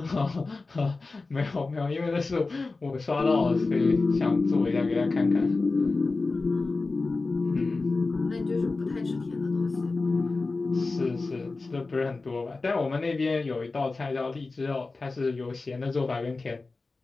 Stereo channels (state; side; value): quieter; right; 3.7 dB